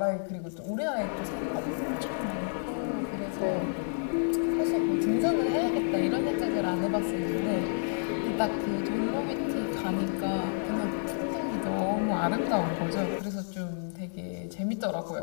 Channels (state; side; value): silent; right; 58 dB below the other